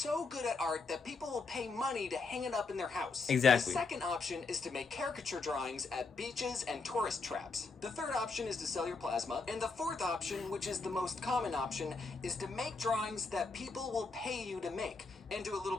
good at art that people will pay money to hang it up in their house. Exactly. The second option is to make caricature drawings at beaches and tourist traps. The third option is to sell your plasma. And the fourth option, which is the most common option, is to make drawings that people will pay you to make, and do a little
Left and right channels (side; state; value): right; quieter; 4.1 dB